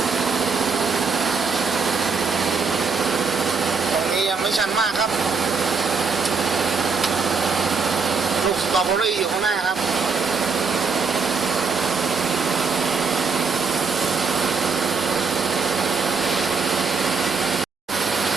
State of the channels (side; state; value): left; quieter; 4.9 dB